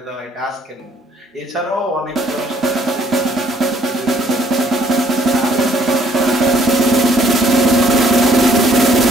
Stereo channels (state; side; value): normal; both; correlation 0.64